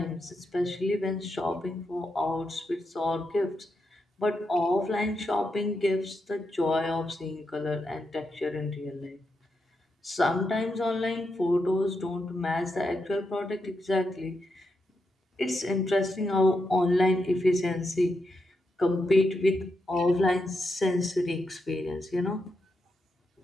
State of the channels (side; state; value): both; normal; correlation 0.84